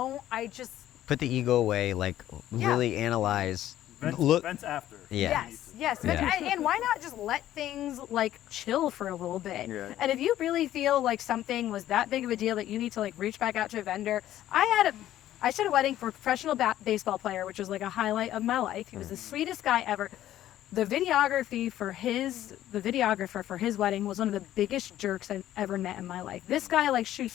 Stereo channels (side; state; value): right; quieter; 12.9 dB